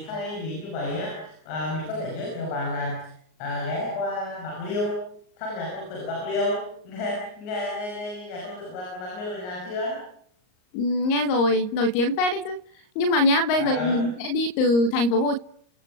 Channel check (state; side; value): late; right; 38 ms